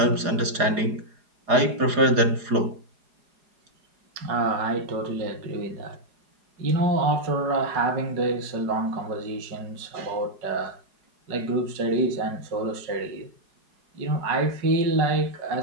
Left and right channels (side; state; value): left; late; 4.9 ms